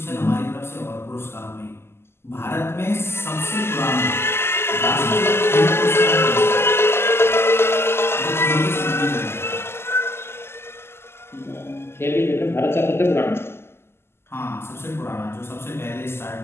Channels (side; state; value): right; late; 0.12 ms